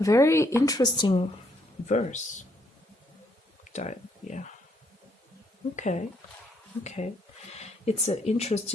interesting verse. Yeah. Okay. It's an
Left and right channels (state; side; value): normal; both; correlation 0.72